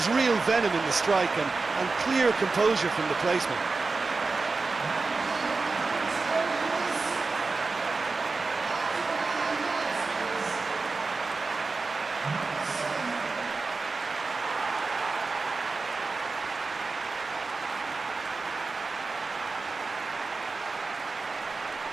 real venom in the strike and clear composure from the placement.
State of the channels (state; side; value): quieter; left; 4.0 dB